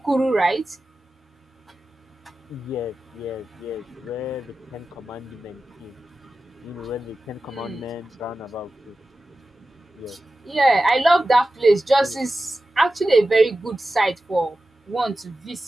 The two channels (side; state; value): both; normal; correlation 0.94